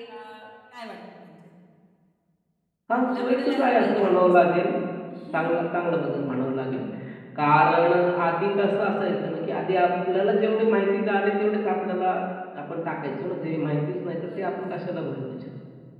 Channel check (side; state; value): both; identical; correlation 1.00